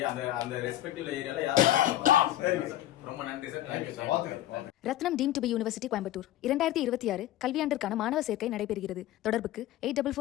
அந்த ரெஸ்பெக்டிவ் ஏரியால யார். ரொம்ப நன்றி sir. Thank you sir. Rathinam deemed to be university Coimbatore 2026 கல்வியாண்டிற்கான மாணவர் சேர்க்கை நடைபெறுகிறது. தொடர்புக்கு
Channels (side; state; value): right; quieter; 13.7 dB